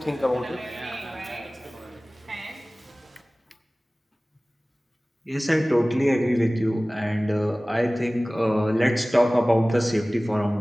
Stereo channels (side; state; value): both; normal; correlation 0.98